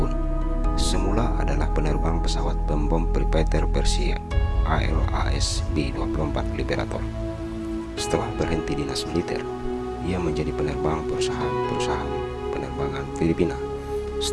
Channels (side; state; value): both; identical; correlation 1.00